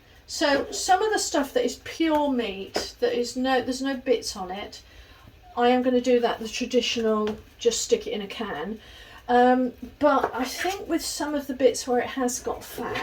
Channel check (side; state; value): both; identical; correlation 1.00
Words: So some of the stuff that is pure meat, there's no bits on it, I am going to do that the traditional, just stick it in a can. But I think with some of the bits where it has got